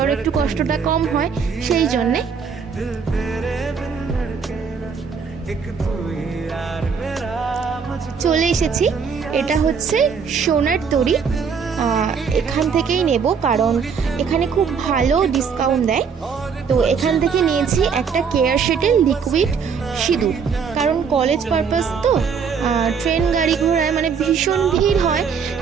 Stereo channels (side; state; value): left; quieter; 6.2 dB